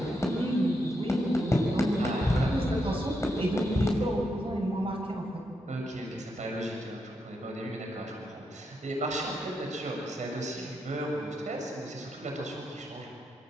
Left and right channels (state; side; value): normal; both; correlation 0.82